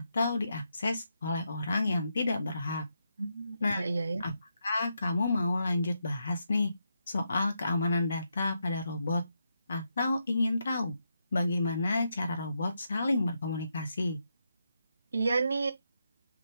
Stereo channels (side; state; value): both; inverted; correlation -0.82